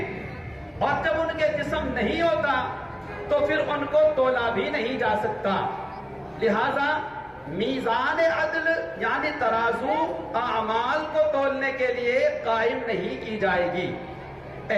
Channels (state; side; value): identical; both; correlation 1.00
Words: اور جب ان کے جسم نہیں ہوتا تو پھر ان کو تولا بھی نہیں جا سکتا، لہذا میزان عدل یعنی ترازو اعمال کو تولنے کے لیے قائم نہیں کی جائے گی۔